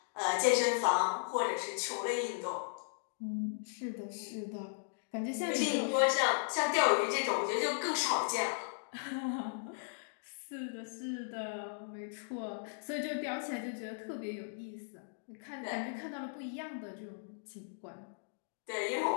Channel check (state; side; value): silent; right; digital silence